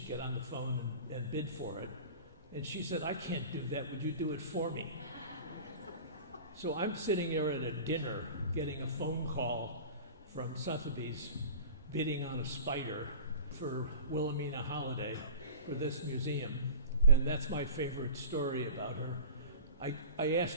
get on the phone and bid for it. And she said, I can't do that, would you do it for me? So I'm sitting there at a dinner getting a phone call from Sotheby's bidding on a spider for Wilhelmina Holiday for this museum. And that's my favorite story about her. I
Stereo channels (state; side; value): inverted; both; correlation -0.38